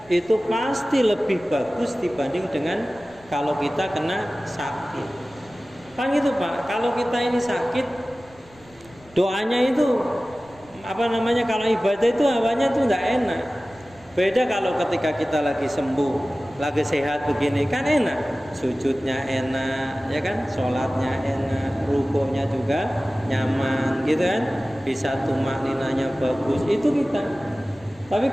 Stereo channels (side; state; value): left; noise; rumble, 26 dB below the sound